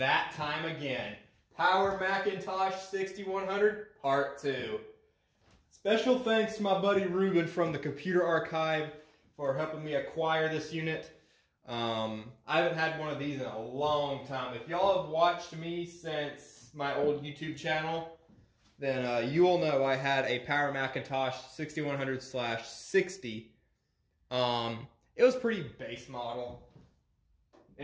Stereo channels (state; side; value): identical; both; correlation 1.00